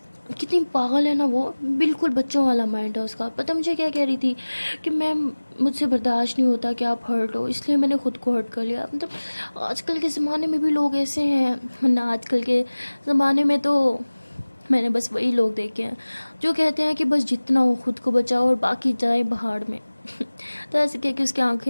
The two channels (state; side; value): inverted; both; correlation -1.00